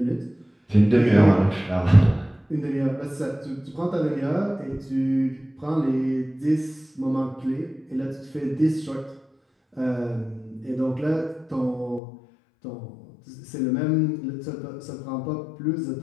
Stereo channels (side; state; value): right; drops out; at 12.0 s